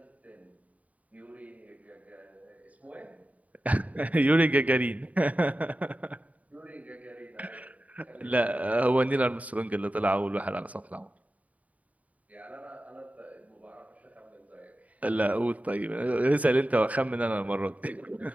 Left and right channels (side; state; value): left; late; 0.070 ms